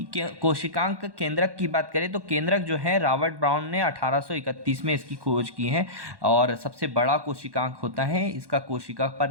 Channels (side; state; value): left; late; 1.1 ms